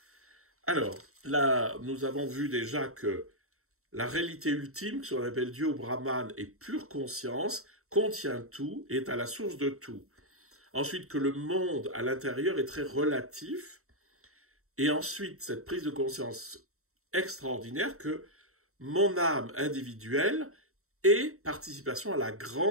Alors, là, nous avons vu déjà que la réalité ultime, ce qu'on appelle Dieu ou Brahman, est pure conscience, contient tout, est à la source de tout. Ensuite, que le monde à l'intérieur est très relatif. Et ensuite, cette prise de conscience extraordinaire que mon âme individuelle est participation à la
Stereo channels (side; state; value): left; late; 0.63 ms